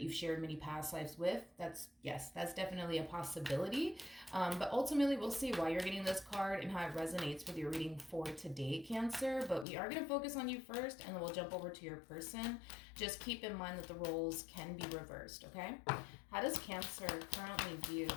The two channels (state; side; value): drops out; right; at 9.7 s